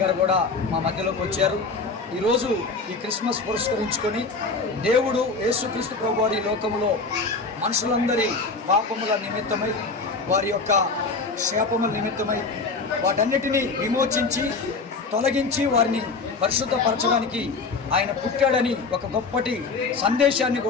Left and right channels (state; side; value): quieter; right; 4.1 dB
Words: గారు కూడా మా మధ్యలోకి వచ్చారు. ఈరోజు ఈ క్రిస్మస్ పురస్కరించుకొని దేవుడు యేసుక్రీస్తు ప్రభు వారి లోకములో మనుషులందరి పాపముల నిమిత్తమై, వారి యొక్క శాపముల నిమిత్తమై వాటన్నిటినీ విమోచించి తొలగించి వారిని పరిశుద్ధపరచడానికి ఆయన పుట్టాడని ఒక గొప్పటి సందేశాన్ని